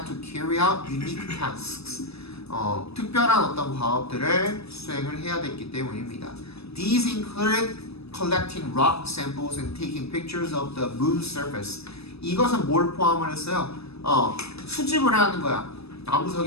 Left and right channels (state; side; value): late; right; 0.78 ms